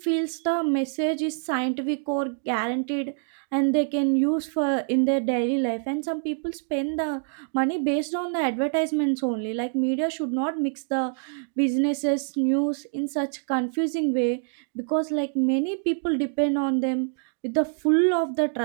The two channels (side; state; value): left; silent; digital silence